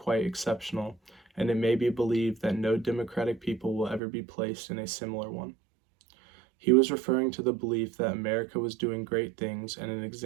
exceptional, and it may be believed that no democratic people will ever be placed in a similar one. He was referring to the belief that America was doing great things and an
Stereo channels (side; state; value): left; drops out; at 4.0 s